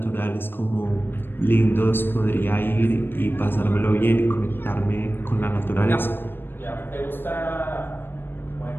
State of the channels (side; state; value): right; late; 0.099 ms